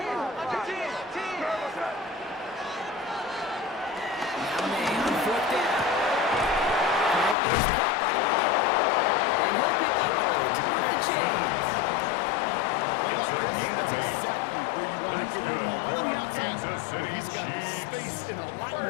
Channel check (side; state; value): right; drops out; at 7.4 s